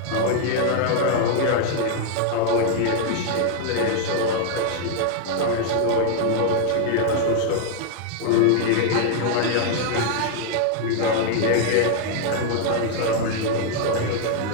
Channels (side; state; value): both; different; correlation 0.00